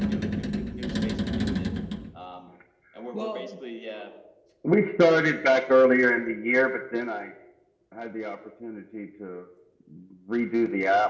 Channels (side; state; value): both; identical; correlation 1.00